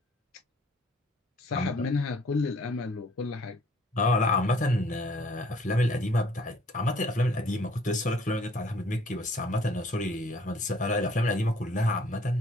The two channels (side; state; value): both; normal; correlation 0.59